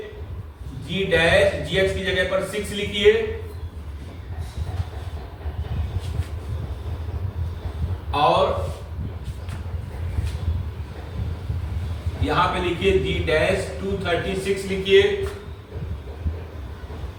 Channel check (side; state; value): both; identical; correlation 1.00